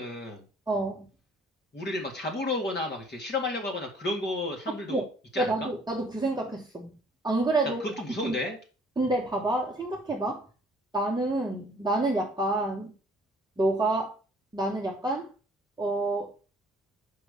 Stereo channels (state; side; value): normal; both; correlation 0.57